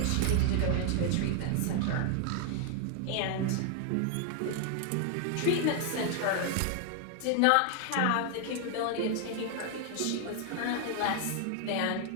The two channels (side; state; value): both; different; correlation 0.00